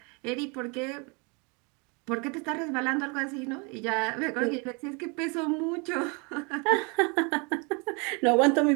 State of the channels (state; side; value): quieter; left; 32.0 dB